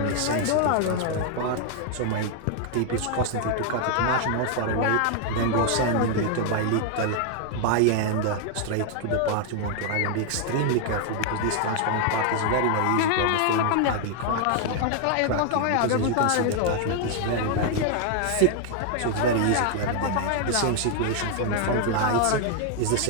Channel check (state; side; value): different; both; correlation 0.00